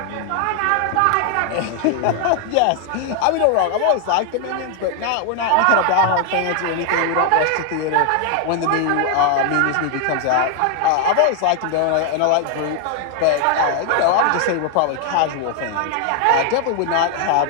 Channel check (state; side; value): different; both; correlation 0.00